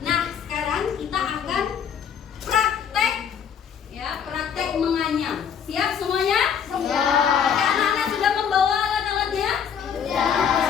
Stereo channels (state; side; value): quieter; right; 7.8 dB